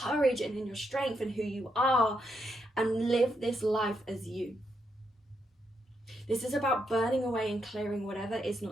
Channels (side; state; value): both; normal; correlation 0.80